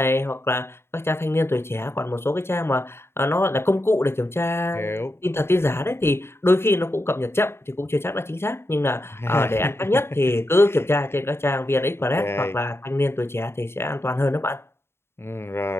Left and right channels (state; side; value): late; right; 0.12 ms